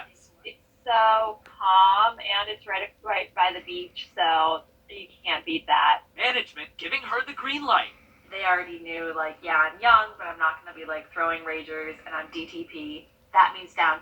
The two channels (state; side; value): identical; both; correlation 1.00